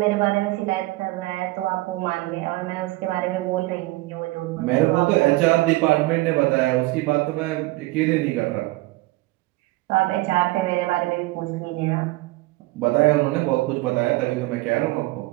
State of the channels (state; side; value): quieter; left; 20.3 dB